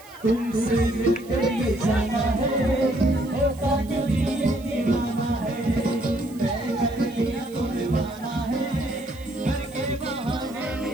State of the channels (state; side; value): noise; right; hiss, 23 dB below the sound